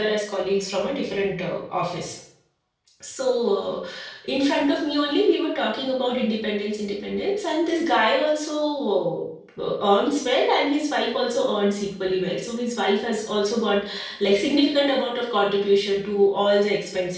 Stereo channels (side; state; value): both; identical; correlation 1.00